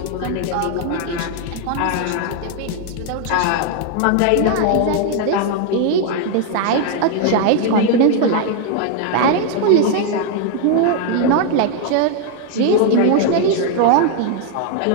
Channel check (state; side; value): different; both; correlation 0.00